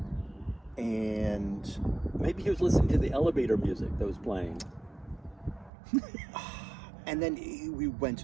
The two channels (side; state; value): left; drops out; at 5.7 s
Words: and Maybe he was listening to the elevator music that was playing. then we went